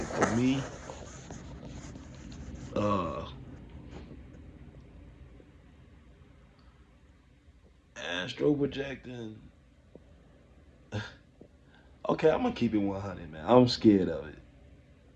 me, uh, astro projecting. Okay, I'm gonna keep it 100, man. I'm scared of it.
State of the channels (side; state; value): both; identical; correlation 1.00